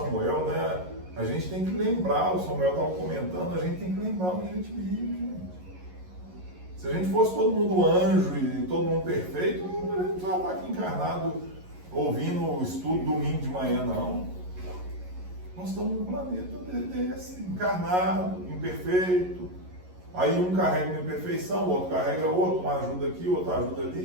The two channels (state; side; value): late; left; 11 ms